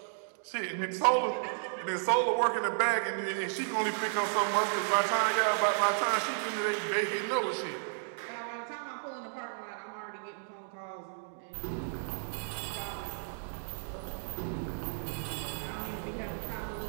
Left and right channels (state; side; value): silent; left; digital silence